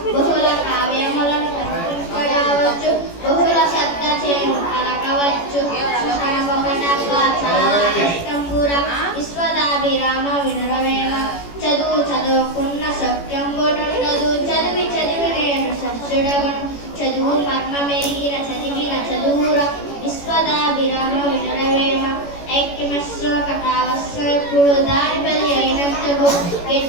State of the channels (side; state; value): right; late; 18 ms